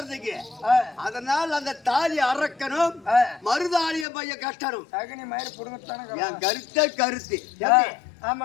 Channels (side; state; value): right; drops out; at 4.0 s